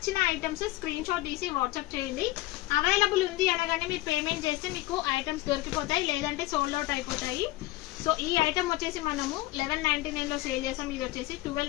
ఐటమ్స్ స్క్రీన్ షాట్ తీసి వాట్సాప్ చేయండి. అవైలబుల్ ఉంది అనగానే మీరు పేమెంట్ చేస్తే మీకు ఐటమ్స్ దొరికిపోతాయి, లేదంటే సోల్డ్ అవుట్ అయిపోతాయి. సో ఈ ఐటమ్ వచ్చేసి మనము 1199 లో సేల్ చేసాం, ఇది వచ్చేసి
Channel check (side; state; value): right; quieter; 18.0 dB